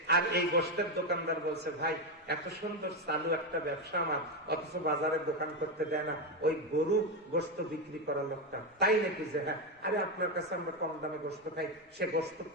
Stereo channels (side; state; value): both; normal; correlation 0.09